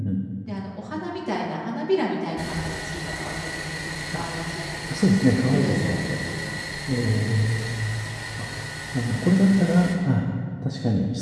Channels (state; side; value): identical; both; correlation 1.00